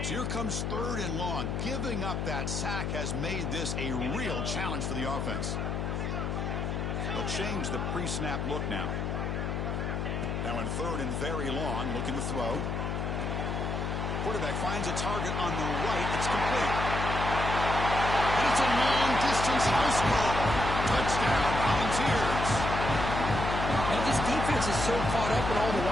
So here comes 3rd and long. Giving up that sack has made this a real challenge for the offense. They'll change the pre-snap look now. Now in 3rd and very long, looking to throw. Quarterback finds a target on the right. It's complete. And it's a long-distance house ball. Touchdown, Volunteers. Now this defense is so caught up in all the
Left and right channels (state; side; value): noise; left; hum, 2 dB below the sound